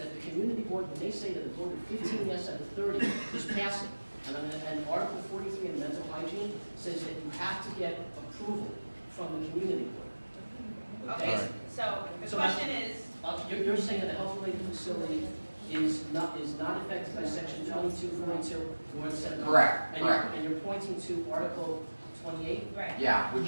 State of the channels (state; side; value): inverted; both; correlation -1.00